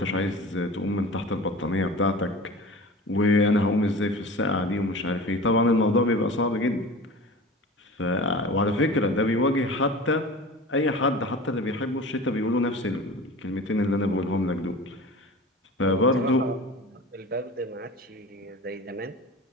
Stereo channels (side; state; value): both; normal; correlation 0.36